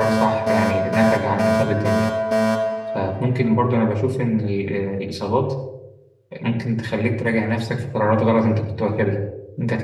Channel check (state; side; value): identical; both; correlation 1.00